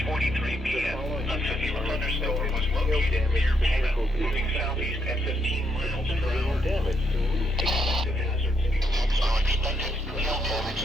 p.m., a severe thunderstorm was located near Pana, moving southeast at 15 miles per hour. Expected hazards are expected. Hail damage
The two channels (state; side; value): normal; both; correlation 0.76